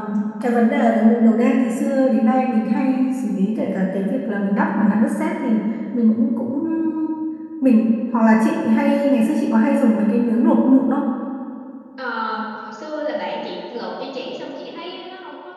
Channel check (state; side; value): identical; both; correlation 1.00